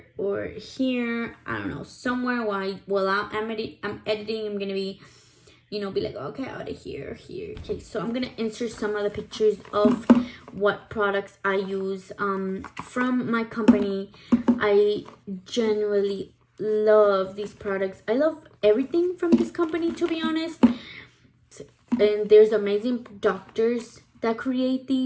or here, I don't know, somewhere while I'm editing. I'm gonna be, be like, okay, out of here. Okay, so I'm gonna insert some of the pictures of what products I use from my company. I genuinely love these products. I love everything from this company, to be honest. And there's amazing doctors that create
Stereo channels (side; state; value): both; identical; correlation 1.00